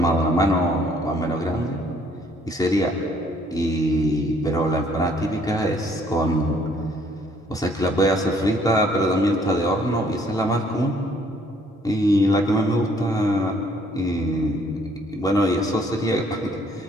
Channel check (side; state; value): both; normal; correlation 0.63